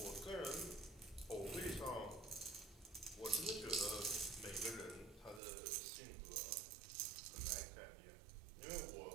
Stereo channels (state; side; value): drops out; left; at 5.4 s